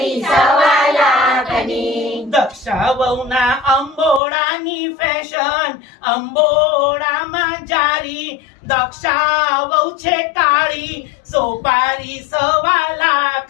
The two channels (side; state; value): right; drops out; at 4.2 s